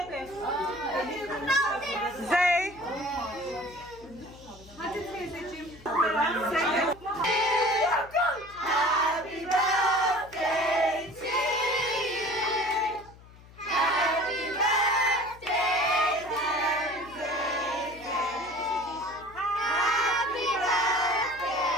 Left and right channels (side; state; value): left; noise; hum, 21 dB below the sound